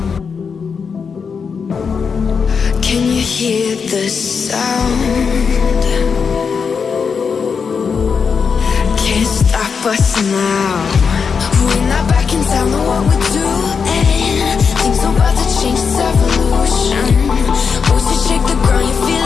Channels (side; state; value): right; quieter; 5.9 dB